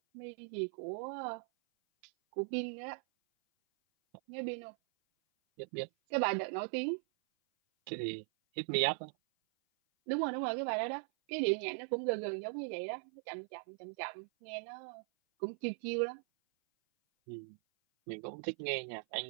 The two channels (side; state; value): left; silent; 51 dB below the other